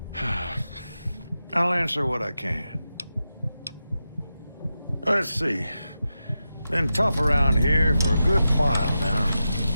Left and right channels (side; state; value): both; inverted; correlation -0.90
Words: I'll answer what I can. Let's see. Been tough around here for a good while now.